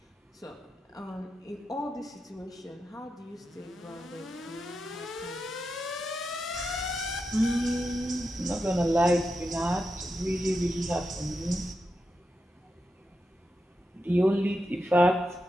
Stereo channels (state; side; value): normal; both; correlation 0.88